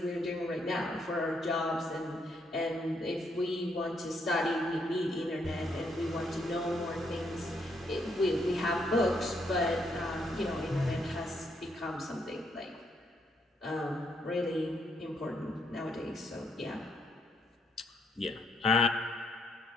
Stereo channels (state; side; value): normal; both; correlation 0.74